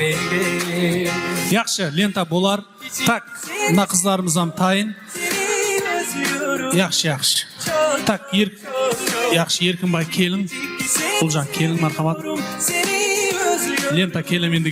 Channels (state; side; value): identical; both; correlation 1.00